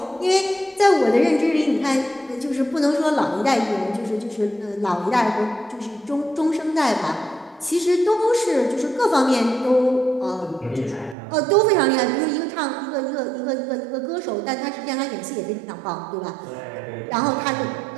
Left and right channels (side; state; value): left; drops out; at 11.2 s